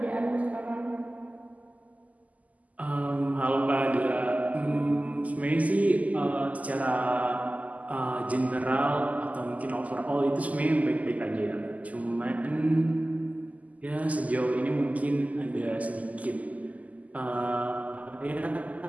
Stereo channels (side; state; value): left; late; 0.075 ms